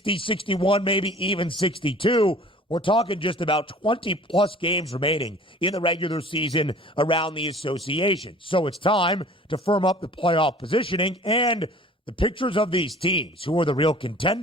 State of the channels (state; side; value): normal; both; correlation 0.47